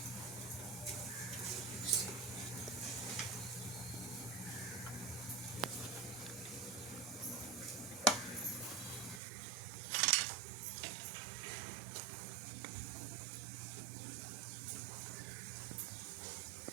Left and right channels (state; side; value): drops out; left; at 9.2 s